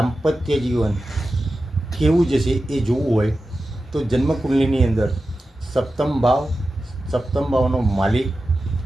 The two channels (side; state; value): both; normal; correlation 0.93